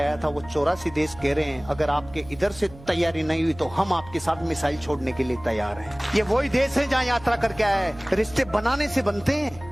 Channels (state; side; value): noise; right; hum, 19 dB below the sound